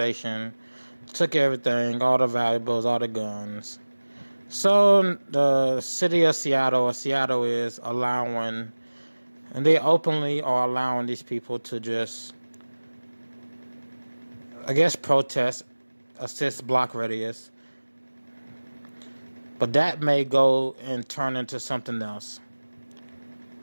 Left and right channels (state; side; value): inverted; both; correlation -1.00